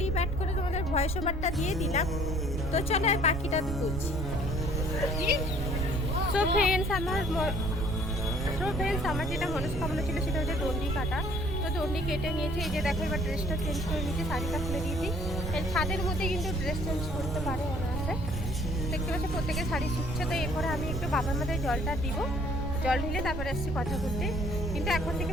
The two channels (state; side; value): noise; right; rumble, 4 dB below the sound